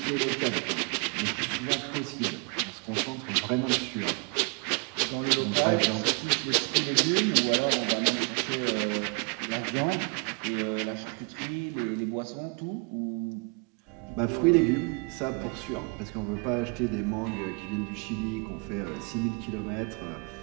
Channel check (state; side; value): quieter; left; 35.6 dB